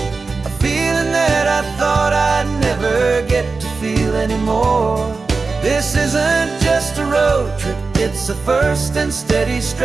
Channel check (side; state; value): left; quieter; 4.2 dB